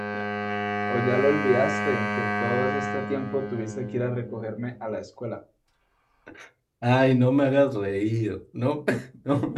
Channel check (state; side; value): identical; both; correlation 1.00